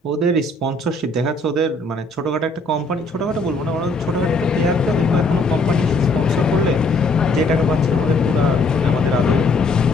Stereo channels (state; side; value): quieter; right; 3.0 dB